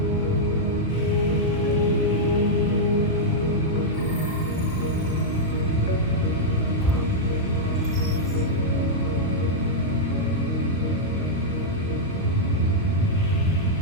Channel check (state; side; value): normal; both; correlation -0.05